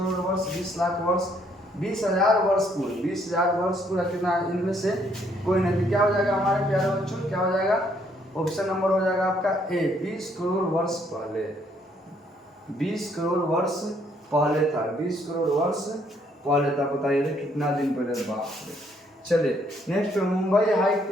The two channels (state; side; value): normal; both; correlation 0.68